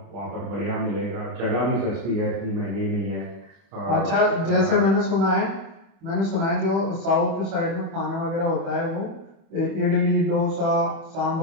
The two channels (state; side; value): late; left; 25 ms